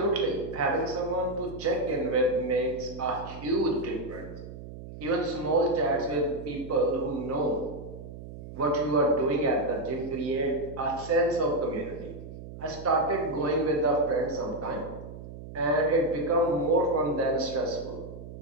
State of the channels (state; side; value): noise; right; hum, 12 dB below the sound